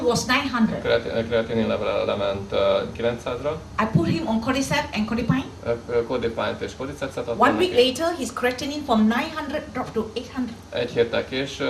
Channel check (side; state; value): both; identical; correlation 1.00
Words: was 900. Kreatinin level lement 900-ra. I put him on cordyceps and codipine. Codipine-t és cordycepset adtam 1 week neki. later, his creatinine from 900 dropped to 800. Egy héttel